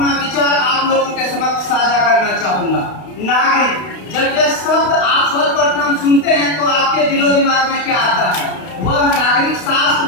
विचार आप लोगों के समक्ष साझा करना चाहूंगा। नागरिक, जब यह शब्द आप सर्वप्रथम सुनते हैं तो आपके दिलो दिमाग में क्या आता है? वह नागरिक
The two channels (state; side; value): late; right; 32 ms